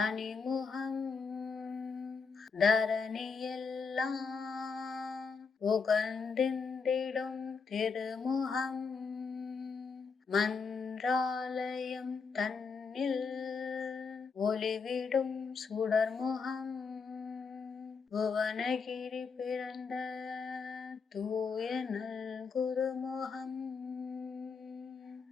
தரணியெல்லாம் உகந்திந்திடும் திருமுகம், மன்றாலயம் தன்னில் ஒளிவிடும் சுடர்முகம், புவனகிரி பிறந்த தூய நல் குருமுகம்,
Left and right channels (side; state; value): right; quieter; 5.2 dB